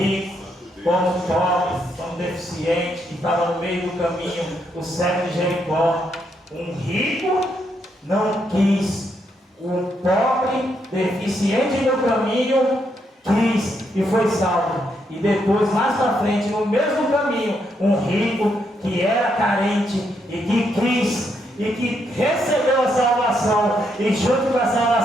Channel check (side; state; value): both; normal; correlation 0.77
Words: como pobre, como deficiente, que estava no meio do caminho, o cego de Jericó. Um rico não quis, um pobre, deficiente no caminho, quis e foi salvo. E depois, mais para frente, no mesmo caminho, um rico que era carente e que quis e que recebeu a salvação, e junto com a